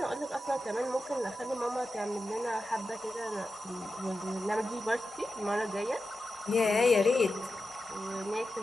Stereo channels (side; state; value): both; normal; correlation 0.91